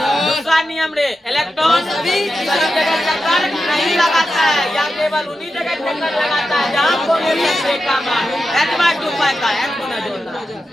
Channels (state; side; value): normal; both; correlation 0.90